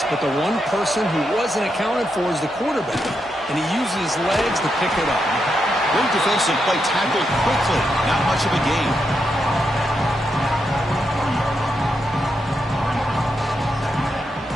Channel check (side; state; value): both; normal; correlation 0.83